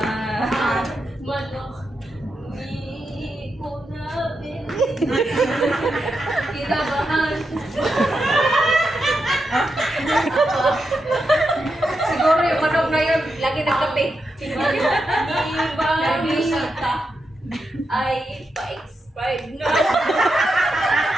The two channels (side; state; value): both; normal; correlation 0.86